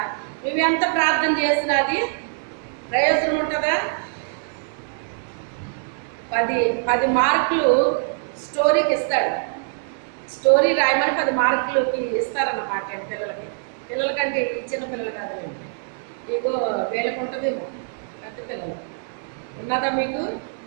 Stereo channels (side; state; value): left; silent; 63 dB below the other